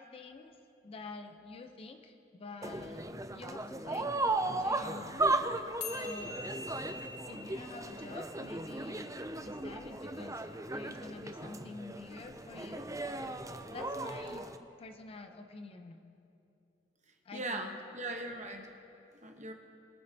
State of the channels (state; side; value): normal; both; correlation 0.44